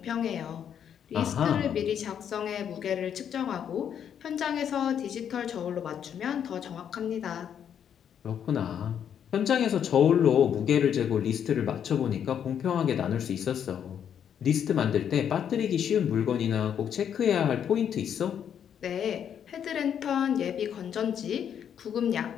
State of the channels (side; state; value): right; quieter; 8.7 dB